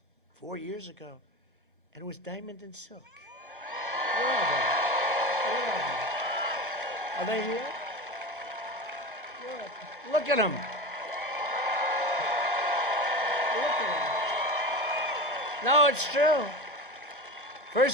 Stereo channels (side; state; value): both; normal; correlation 0.26